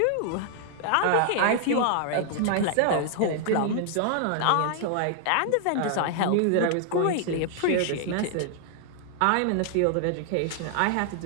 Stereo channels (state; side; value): different; both; correlation 0.00